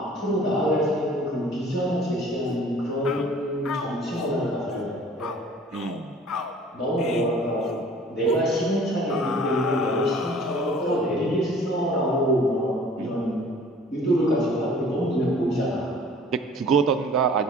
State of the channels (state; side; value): normal; both; correlation 0.50